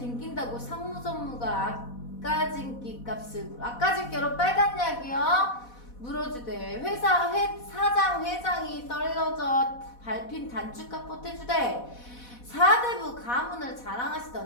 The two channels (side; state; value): right; late; 4.1 ms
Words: 상무전무가 아까진기 값을 아까진께로 빨간 약이요? 물어주대. 사장 회장이 떨어져 밟힌 단축값 보태주대. 사대부 가문을